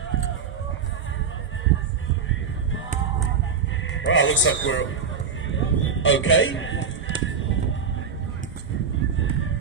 Well, looks like we're okay.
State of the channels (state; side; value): quieter; left; 6.0 dB